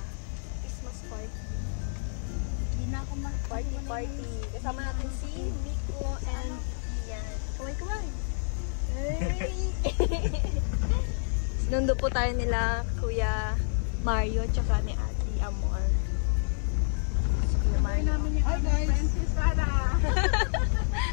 Christmas party. Hindi na ako party. Kasama natin si Miko and Ian. Kaway-kaway. Hey! Nundo po tayo nila Kuya Mario tsaka ni Ate Amor. Kuya Mario. Hi guys!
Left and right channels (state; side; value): silent; right; 59 dB below the other